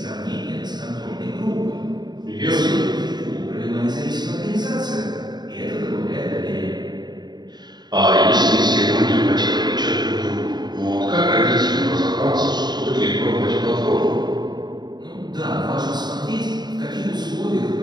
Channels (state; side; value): late; left; 0.20 ms